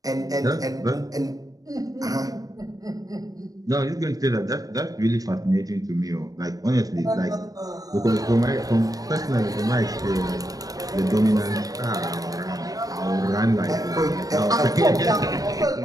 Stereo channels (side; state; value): left; late; 0.18 ms